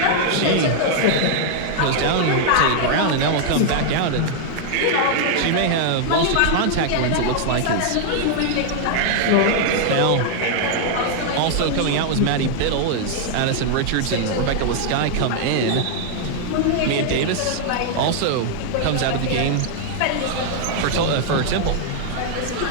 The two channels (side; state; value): both; different; correlation 0.00